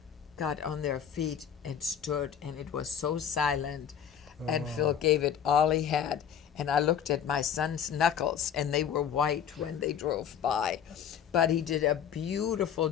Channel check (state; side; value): quieter; right; 8.6 dB